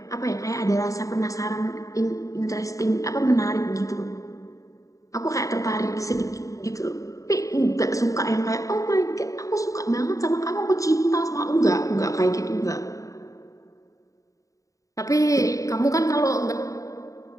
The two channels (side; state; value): right; late; 0.16 ms